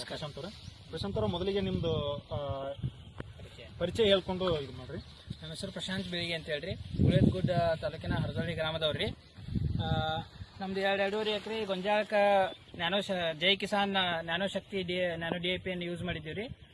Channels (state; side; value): identical; both; correlation 1.00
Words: ಪ್ರಶಾಂತ್ ಅವರ ಮೊದಲಿಗೆ ನಿಮ್ದು ಪರಿಚಯ ಹೇಳ್ಕೊಂಡು ಇದು ಮಾಡ್ರಿ. ನನ್ನ ಹೆಸರು ಪ್ರಶಾಂತ್ ಬಿಳಿಗಿ ಅಂತ ಹೇಳ್ರಿ. ಗುಳೇದಗುಡ್ಡ ತಾಲೂಕಿನ ಹರದೊಳ್ಳಿ ಗ್ರಾಮದವ್ರಿ. ನಮ್ದು 2.5 ಎಕರೆ ಗೊಂಜಾಳಕ್ಕ ಜೈ ಕಿಸಾನ್ ನ್ಯಾನೋ ಶಕ್ತಿ ನ್ಯಾನೋ DAP ಯೂಸ್ ಮಾಡಿದ್ದೀವಿ.